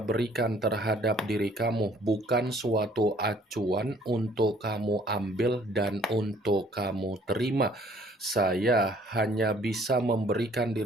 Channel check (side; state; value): both; normal; correlation 0.58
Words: terhadap diri kamu bukan suatu acuan untuk kamu ambil dan untuk kamu terima. Saya hanya bisa memberikan